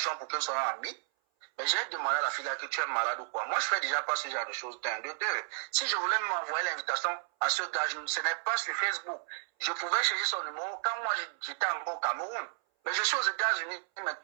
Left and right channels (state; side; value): silent; left; 56 dB below the other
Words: pour qu'elle soit amie. Mais j'ai demandé à la fille là que tu es malade ou quoi. Moi, je fais déjà pas ce genre de choses. D'un, de deux. Si je voulais m'envoyer l'invitation à ce gars, ce n'est pas sur Facebook. Je pouvais chercher son numéro quand moi j'étais encore au Cameroun. Mais je suis aux États-Unis